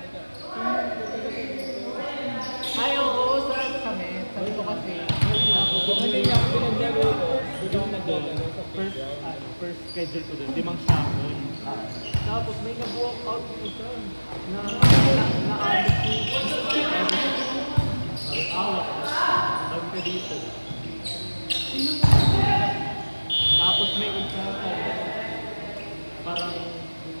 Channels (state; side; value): inverted; both; correlation -1.00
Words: ka, Ay, oo, saan kami? Sabi ko kasi, kung hindi niya ako pinaglaro ko, hindi ako naglalaro sa playground. first schedule ko doon, 5 sahon. Tapos may nag-walk out yung isa na na-alit ko. Awak. Sabi ka dito. Tapos may isa parang